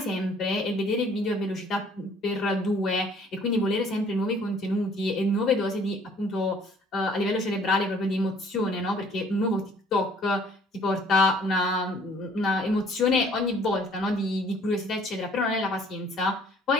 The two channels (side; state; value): both; normal; correlation 0.57